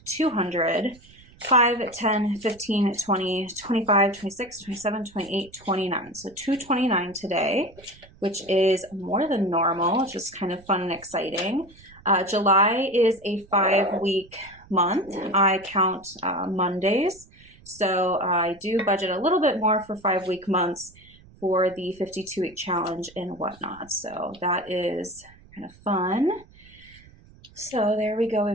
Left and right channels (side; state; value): right; noise; rumble, 25 dB below the sound